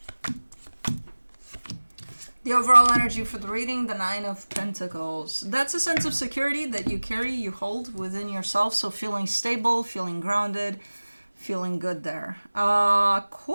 The overall energy for the reading, the Nine of Pentacles. That's a sense of security that you carry, you hold within yourself. So feeling stable, feeling grounded, feeling good there.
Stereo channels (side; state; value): both; inverted; correlation -1.00